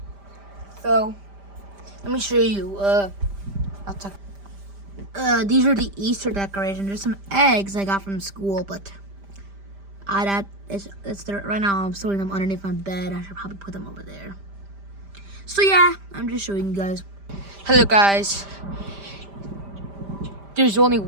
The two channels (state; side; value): late; left; 5.0 ms